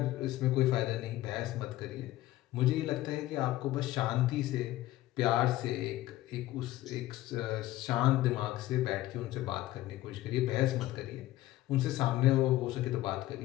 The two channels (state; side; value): quieter; right; 15.8 dB